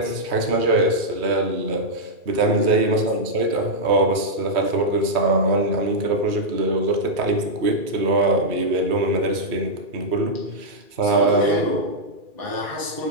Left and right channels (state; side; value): late; left; 2.4 ms